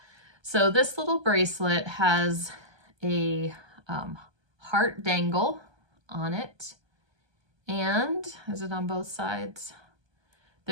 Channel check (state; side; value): late; left; 1.3 ms